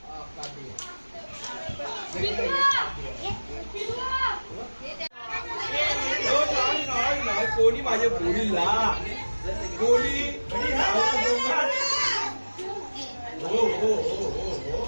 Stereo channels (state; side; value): inverted; both; correlation -1.00